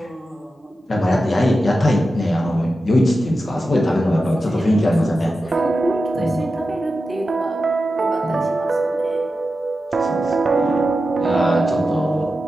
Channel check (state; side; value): normal; both; correlation 0.91